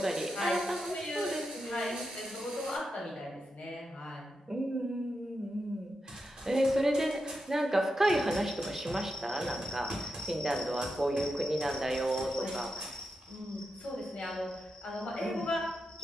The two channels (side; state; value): both; normal; correlation 0.87